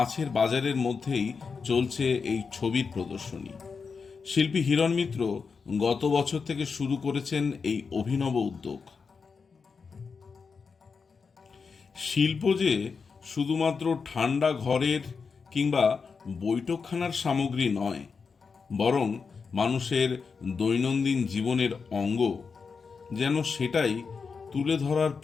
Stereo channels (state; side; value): quieter; right; 5.3 dB